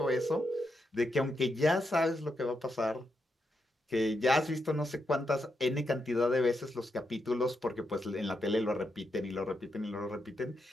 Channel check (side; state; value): both; normal; correlation 0.83